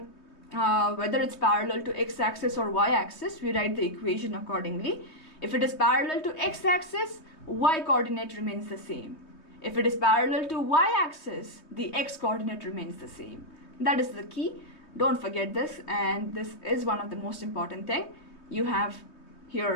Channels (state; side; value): late; right; 3.2 ms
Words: whether it's parallel to x-axis or y-axis, we write the equation accordingly. If it is parallel to x-axis, y-coordinate remains the same. If it is parallel to y-axis, the x-coordinate remains the same. That is the key. Don't forget this, and this is one of the most important things you have